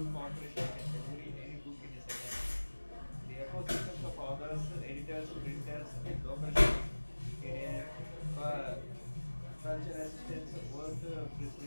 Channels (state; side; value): inverted; both; correlation -1.00